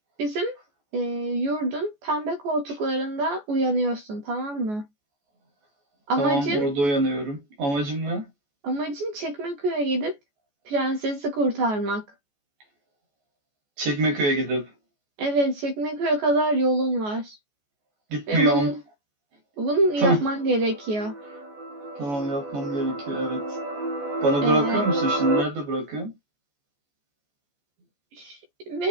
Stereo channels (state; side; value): late; left; 14 ms